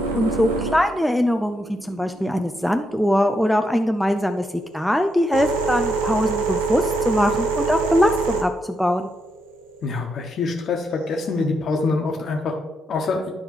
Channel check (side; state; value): both; normal; correlation 0.81